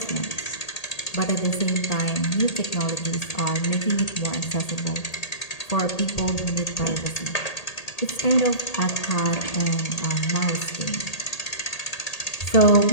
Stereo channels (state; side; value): late; right; 1.8 ms